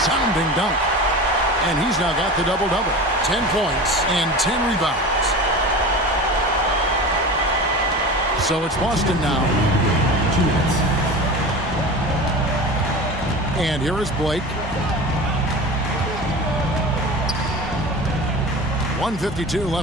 dunk. And he's now got the double-double. 10 points and 10 rebounds. So it's Boston now. 2 minutes. And here is Blake. 1:52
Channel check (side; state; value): both; normal; correlation 0.32